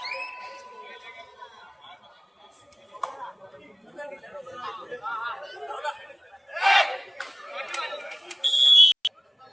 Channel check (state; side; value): identical; both; correlation 1.00